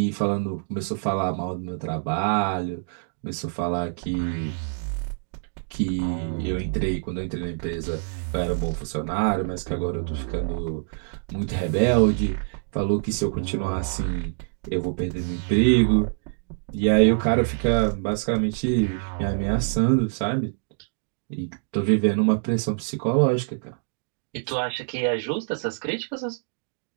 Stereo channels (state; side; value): silent; left; digital silence